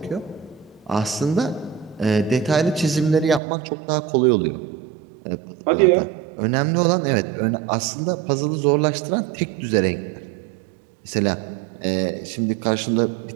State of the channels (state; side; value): drops out; left; at 3.4 s